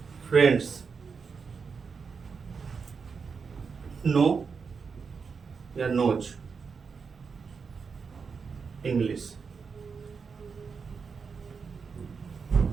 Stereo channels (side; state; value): left; quieter; 5.5 dB